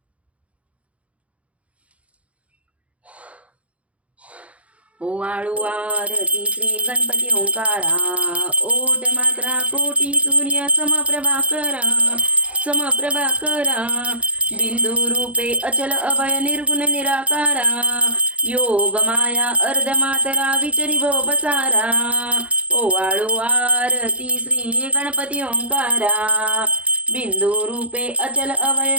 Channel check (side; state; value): left; late; 0.064 ms